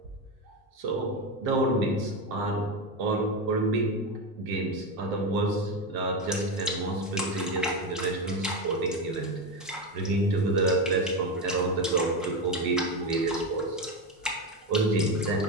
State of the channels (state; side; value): normal; both; correlation 0.15